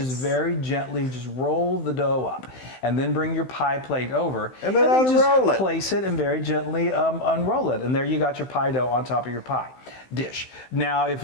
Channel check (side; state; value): right; late; 16 ms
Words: very gently just roll the dough up, and then bring your pie plate over, and then just place it and very gently unroll it, and there you got your pie dough on top of your pie dish. Now, if